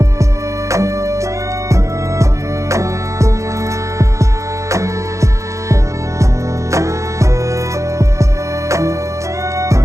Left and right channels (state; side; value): late; left; 0.15 ms